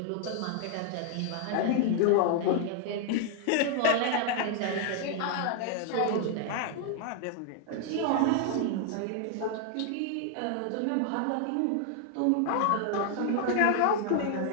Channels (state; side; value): different; both; correlation 0.00